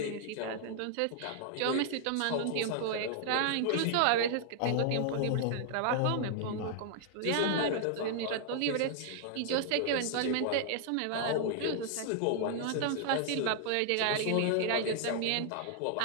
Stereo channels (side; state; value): both; different; correlation 0.00